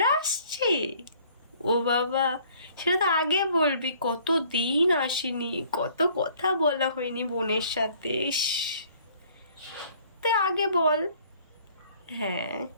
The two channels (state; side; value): inverted; both; correlation -0.57